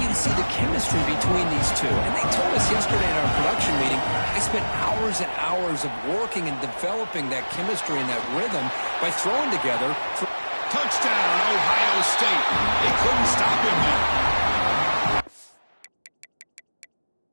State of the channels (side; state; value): both; inverted; correlation -1.00